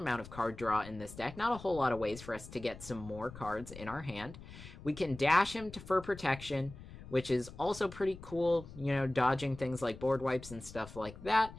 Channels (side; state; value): left; noise; rumble, 15 dB below the sound